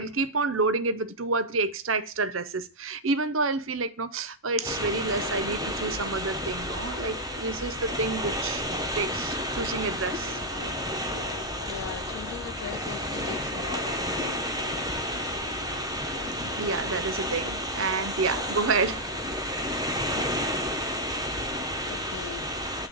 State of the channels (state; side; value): normal; both; correlation -0.04